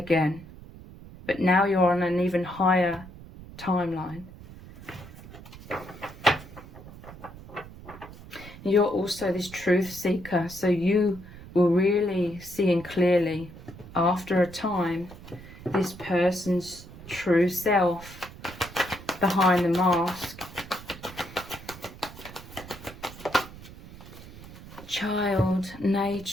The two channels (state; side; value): noise; right; rumble, 16 dB below the sound